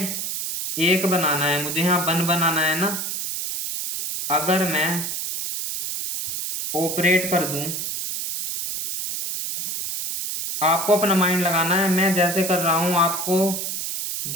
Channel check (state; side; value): noise; right; hiss, 4 dB below the sound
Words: 1 बनाना है मुझे, यहाँ 1 बनाना है ना। अगर मैं ऑपरेट कर दूँ आपको अपना माइंड लगाना है, मैं जैसे कर रहा हूँ आपको